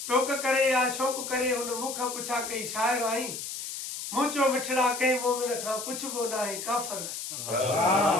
टोक करे या शौक़ करे हुन मूंखां पुछा कई शाइर आहीं। मुंचो मिठड़ा कंहिं मोमिन खां पुछबो न आहे काफ़र आहीं।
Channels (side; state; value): left; noise; hiss, 7 dB below the sound